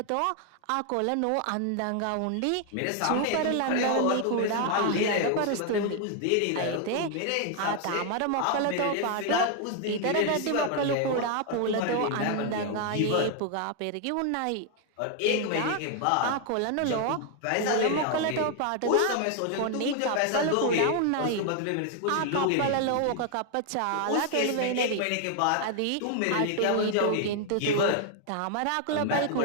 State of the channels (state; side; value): different; both; correlation 0.00